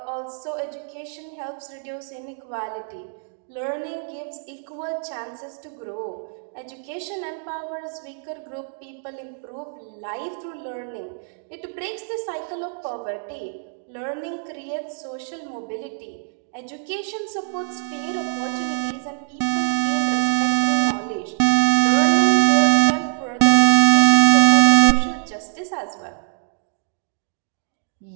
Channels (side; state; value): left; silent; digital silence